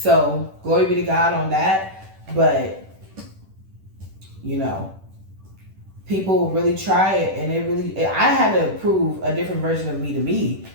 glory be to God on that. But, you know, people really try it. And I had to prove a different version of me to me.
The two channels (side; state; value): left; late; 10 ms